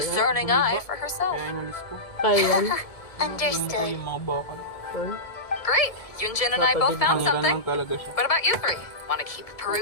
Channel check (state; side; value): late; right; 1.7 ms